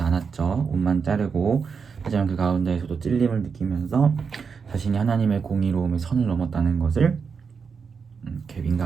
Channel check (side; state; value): left; quieter; 5.8 dB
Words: 않았죠. 옷만 자르고, 하지만 그 가운데에서도 찔림을 느끼면서 자신이 하나님의 공의로움의 선을 넘었다는 것을 이렇게